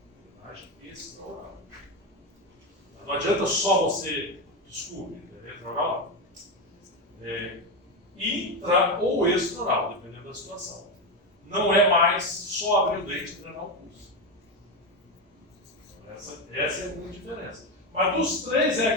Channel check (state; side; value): normal; both; correlation 0.13